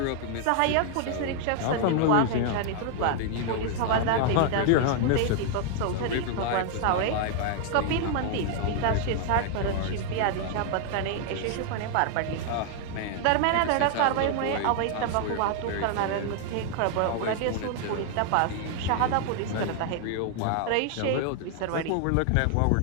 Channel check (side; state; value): both; different; correlation 0.00